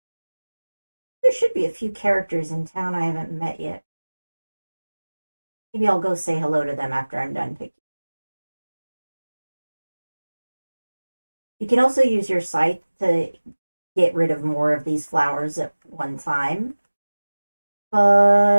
There should be a few characters in town I haven't met yet. Maybe I'll go say hello to them after I'm done picking. You can also use your scythe to get rid of more of these flowers at one time.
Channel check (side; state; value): both; inverted; correlation -1.00